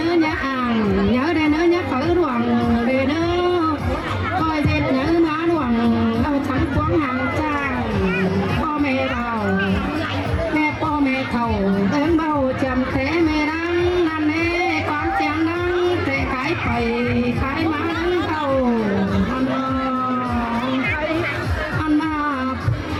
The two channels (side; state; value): both; identical; correlation 1.00